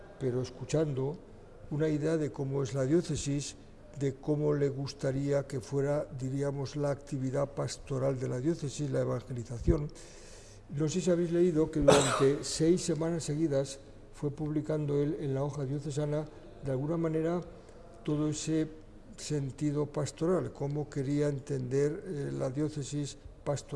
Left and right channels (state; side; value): identical; both; correlation 1.00